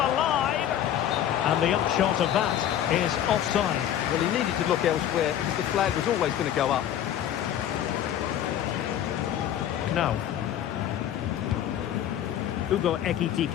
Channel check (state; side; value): quieter; right; 10.8 dB